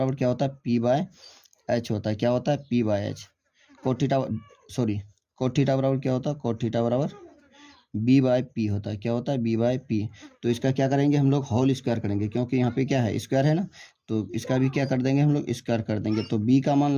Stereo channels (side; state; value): both; identical; correlation 1.00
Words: क्या होता है पी बाय एच होता है, क्या होता है p by h. Cot theta बराबर क्या होता है कॉट थीटा बराबर बी बाय पी होता है, क्या होता है बी बाय पी। तो इसका क्या करेंगे हम लोग होल स्क्वायर करेंगे, क्योंकि यहाँ पे क्या है स्क्वायर है ना, तो इसका भी क्या कर देंगे हम लोग स्क्वायर कर देंगे। तो बी का मान